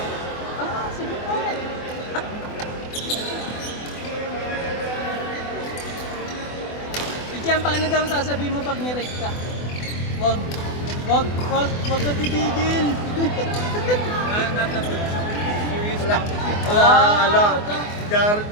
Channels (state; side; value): late; right; 24 ms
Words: Ah, sige po. Ichian, paano daw sasabihin mo pag nirate ka? Wag ka titigil. Ala. Jared